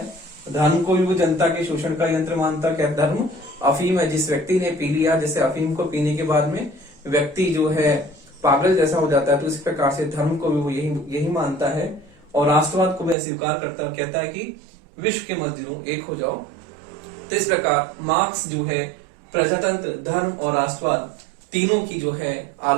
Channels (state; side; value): drops out; left; at 13.2 s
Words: धर्म को भी वो जनता के शोषण का यंत्र मानता। क्या धर्म अफीम है, जिस व्यक्ति ने पी लिया, जैसे अफीम को पीने के बाद में व्यक्ति जो है पागल जैसा हो जाता है, तो इस प्रकार से धर्म को भी वो यही मानता है। और राष्ट्रवाद को भी अस्वीकार करता है, कहता है कि विश्व के मजदूरों एक हो जाओ। तो इस प्रकार मार्क्स जो है प्रजातंत्र, धर्म और राष्ट्रवाद तीनों की जो है